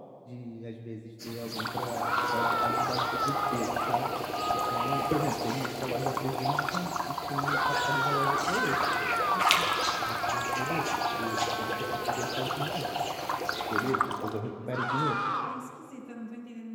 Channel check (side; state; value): both; identical; correlation 1.00